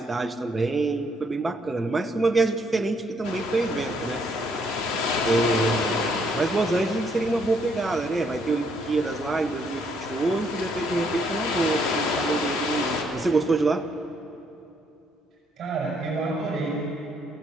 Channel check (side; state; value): both; normal; correlation 0.70